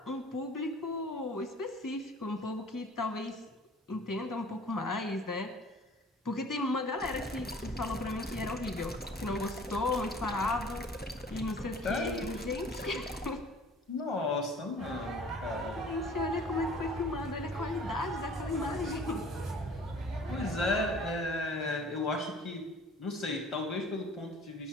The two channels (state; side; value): normal; both; correlation 0.49